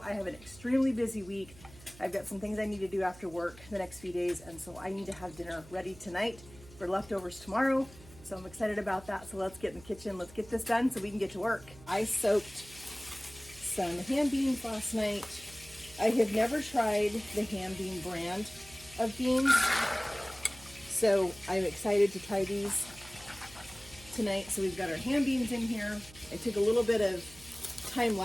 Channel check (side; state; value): right; noise; hum, 21 dB below the sound